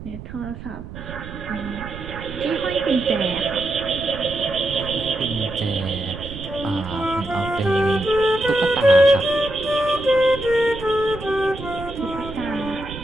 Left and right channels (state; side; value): noise; right; rumble, 12 dB below the sound